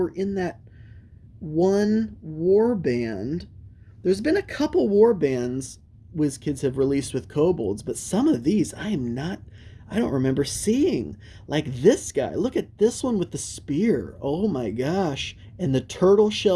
in that one warband. There's been a couple warbands WizKids have released with kobolds, but some of these I don't remember seeing. Like this guy. Look at this one with the spear. Oh my gosh. And the tortoise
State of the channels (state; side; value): identical; both; correlation 1.00